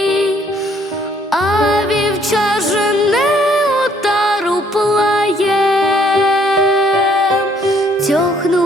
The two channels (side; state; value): both; normal; correlation 0.64